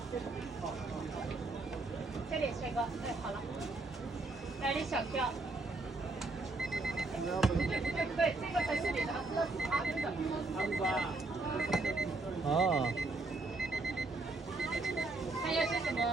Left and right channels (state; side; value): quieter; left; 3.2 dB